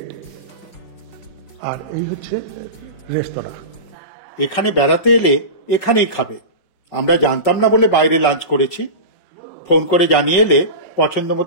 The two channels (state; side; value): late; right; 5.4 ms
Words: আর এই হচ্ছে রেস্তোরাঁ। এখানে বেড়াতে এলে এখানেই খাবে, আমরা জানতাম না বলে বাইরে লাঞ্চ করেছি। ফোন করে জানিয়ে এলে পছন্দ